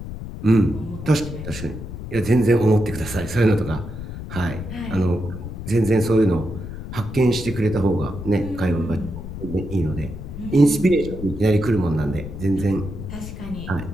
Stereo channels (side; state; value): left; noise; rumble, 9 dB below the sound